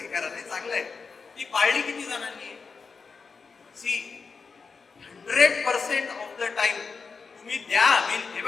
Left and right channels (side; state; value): right; quieter; 5.0 dB